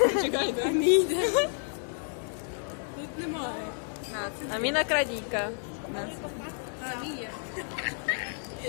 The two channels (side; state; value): right; silent; 58 dB below the other